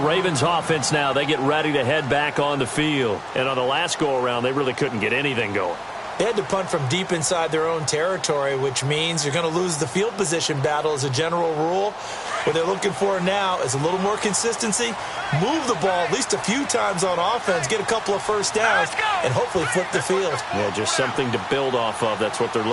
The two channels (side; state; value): both; identical; correlation 1.00